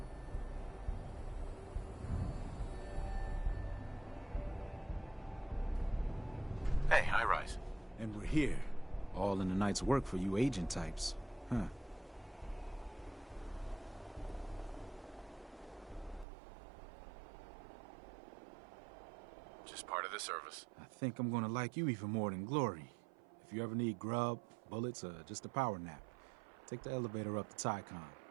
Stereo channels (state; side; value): drops out; left; at 16.2 s